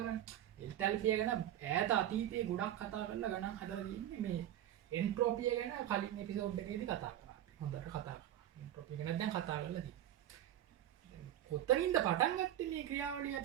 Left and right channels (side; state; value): left; quieter; 12.1 dB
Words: එන්තැල්පිය ගැන ඈත අතීතයේ ගොඩක් කතා කරලා ගණන් හදලා තියෙන්නේ මේ එන්ට්‍රොපිය ගැන කලින් එපිසෝඩ් එකේදී කතා කරා. හොඳට කතා කරා. එන්ට්‍රොපිය ගැන දැන් කතා කරලා තියෙනවා. කොතනින්ද පටන් ගත්තේ මේ ක්‍රියාවලිය